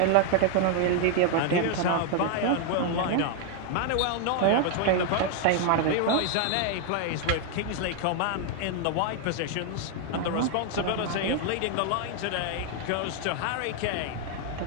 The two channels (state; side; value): different; both; correlation 0.00